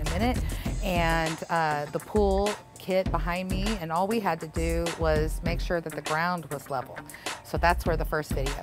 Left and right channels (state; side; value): identical; both; correlation 1.00